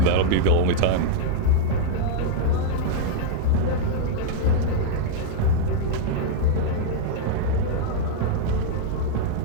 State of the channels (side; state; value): both; different; correlation -0.01